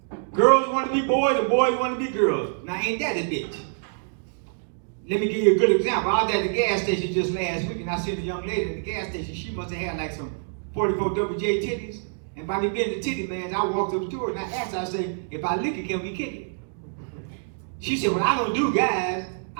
Girls want to be boys, and boys want to be girls. Now, ain't that a bitch? Let me give you a good example. I was at the gas station just last week, and I seen a young lady at the gas station. She must have had like some 44 WJ titties. And by me being the titty man, I walked up to her and I asked her, I said, if I lick it, can we kick it? She said, well, I don't do guys.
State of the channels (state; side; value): silent; left; digital silence